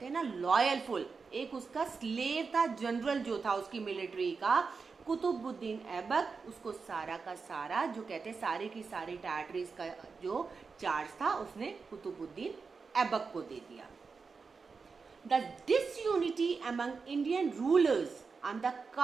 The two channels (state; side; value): quieter; left; 4.9 dB